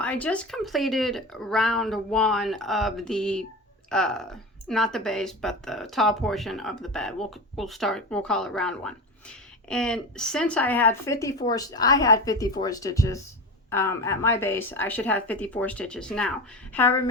just completed round one of the not the base, but the top portion of the bed. We'll call it round one. And since I had 54 stitches at my base, I should have 54 stitches now. However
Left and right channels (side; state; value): both; normal; correlation 0.26